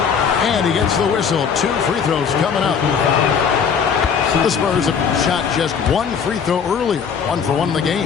And he gets the whistle. 2 free throws coming up. The Spurs have shot just 1 free throw earlier. 1 for 1 in the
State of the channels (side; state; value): right; quieter; 6.7 dB